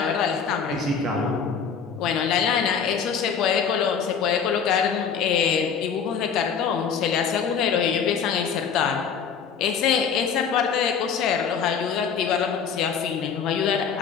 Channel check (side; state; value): right; quieter; 6.7 dB